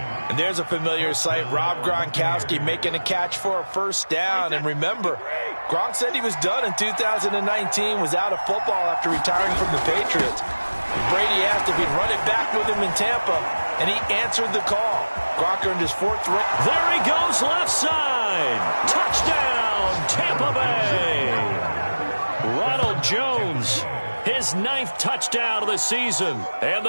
there's a familiar sight, Rob Gronkowski making a catch for a first down. And remember, Gronk said he was done in 2019, was out of football after retiring from the Patriots. Brady asked if he'd run it back with him in Tampa, and he answered the call. Gronk earned his 4th ring. There he goes, left side. Touchdown, Tampa Bay. Ronald Jones, his 9th touchdown of the season, and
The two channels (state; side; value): inverted; both; correlation -1.00